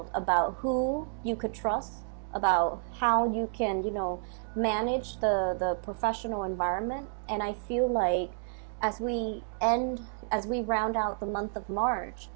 about who you could trust, about how you can, you know, manage the professional environment. And I feel like as we round out the month of March,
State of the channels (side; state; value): left; silent; digital silence